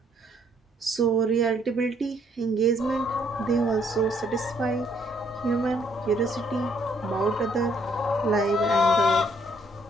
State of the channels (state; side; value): normal; both; correlation 0.67